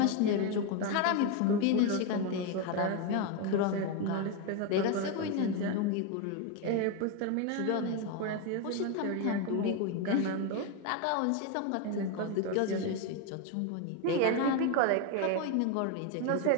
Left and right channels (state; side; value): different; both; correlation 0.02